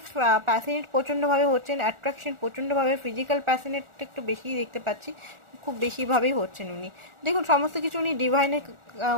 প্যাশনেট প্রচণ্ডভাবে হচ্ছেন, অ্যাট্রাকশন প্রচণ্ডভাবে, ফিজিক্যাল প্যাশনেট একটু বেশিই দেখতে পাচ্ছি, খুব বেশিভাবেই হচ্ছেন উনি। দেখুন, সমস্ত কিছু উনি ডিভাইনের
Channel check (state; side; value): late; left; 1.4 ms